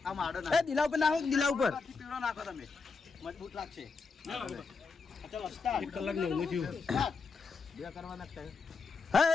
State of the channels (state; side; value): quieter; right; 4.7 dB